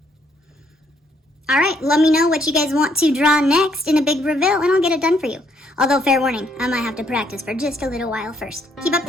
Alright, let me know what you guys want to draw next in a big reveal, and I'll get it done for you. Although, fair warning, I might have to practice for just a little while first. Keep up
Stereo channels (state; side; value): normal; both; correlation 0.70